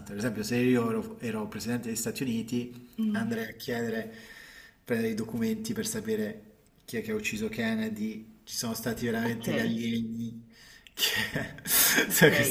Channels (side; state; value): both; identical; correlation 1.00